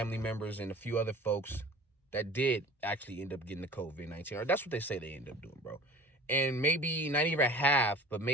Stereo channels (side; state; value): both; normal; correlation 0.44